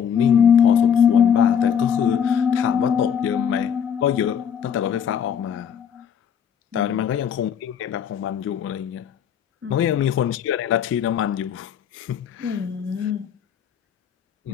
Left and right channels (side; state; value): right; quieter; 8.0 dB